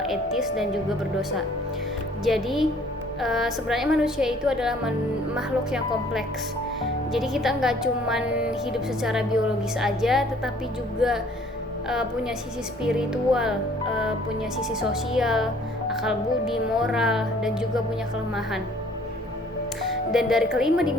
etis, dan juga berdosa. Jadi sebenarnya manusia itu adalah makhluk yang kompleks. Jadi kita nggak cuman hidup secara biologis aja, tetapi juga punya sisi spiritual, punya sisi sosial, akal budi, moral, dan juga punya kelemahan. Dan dari kelima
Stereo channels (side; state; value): both; normal; correlation 0.57